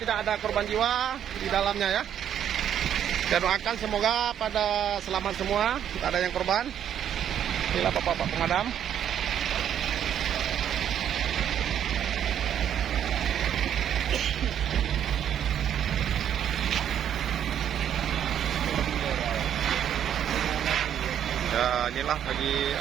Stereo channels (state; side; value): quieter; left; 9.6 dB